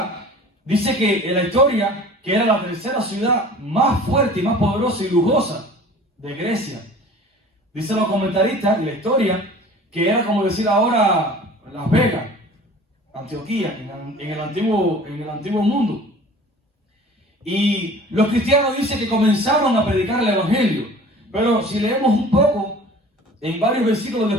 dice que en la historia, que era la tercera ciudad más fuerte y más poderosa y lujosa de Grecia. Dicen los comentaristas en la historia que era como decir ahora Las Vegas, Antioquía, en el antiguo mundo. Y los cristianos dicen que comenzaron a predicar el evangelio. Pero si leemos un poco, en varios versículos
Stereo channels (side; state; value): both; normal; correlation 0.44